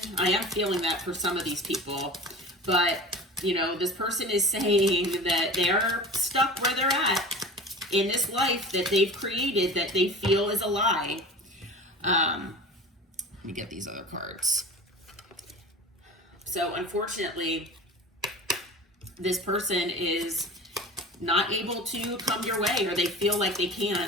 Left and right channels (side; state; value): both; normal; correlation 0.36